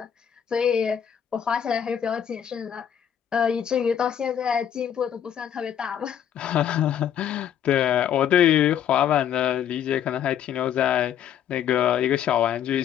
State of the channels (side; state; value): right; quieter; 9.3 dB